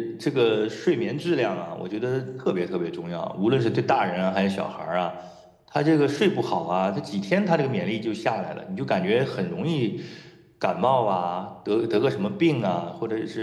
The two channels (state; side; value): identical; both; correlation 1.00